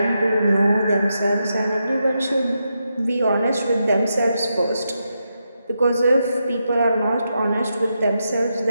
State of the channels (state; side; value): inverted; both; correlation -0.85